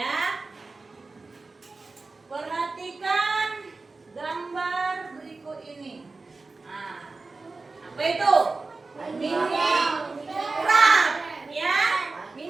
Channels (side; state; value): left; quieter; 3.7 dB